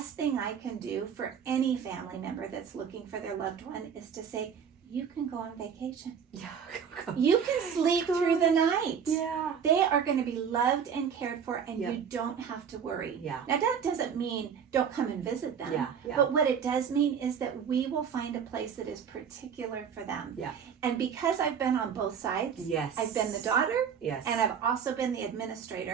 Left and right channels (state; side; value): quieter; left; 7.3 dB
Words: thing I can do for any family member that's looking for their loved one is to say, you can go on vacation. You can sleep through the night. They are going to be loved and cared for, and you don't have to worry. Now, that doesn't mean don't come and visit them. But what it does mean is that we will find a place that is particular for them. And because I've been on both sides, I've been the daughter, and I've also been the